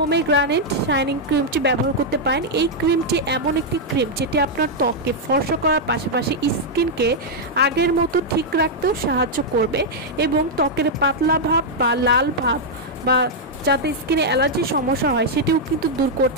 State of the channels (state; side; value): normal; both; correlation -0.03